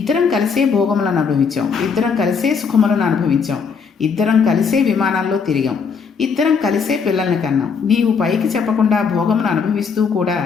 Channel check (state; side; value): quieter; right; 5.8 dB